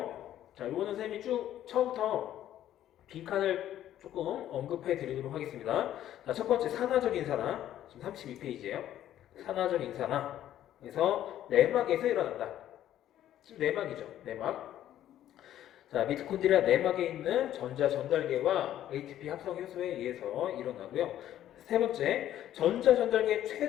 자, 이거는 선생님이 쭉 처음부터 빈칸을 조금 언급해 드리도록 하겠습니다. 자, 첫 번째 산화적 인산화. 지금 32페이지예요. 산화적 인산화에서 내막에서 일어난다. 지금 내막이죠. 내막. 자, 미토콘드리아 내막에 있는 전자 전달계와 ATP 합성 효소에 의해서 일어나고요. 세 번째, 전자 전달계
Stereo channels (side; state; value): right; quieter; 12.0 dB